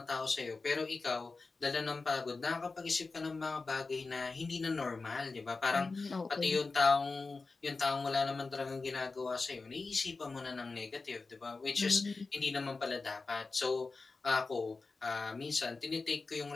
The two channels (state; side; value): quieter; right; 3.9 dB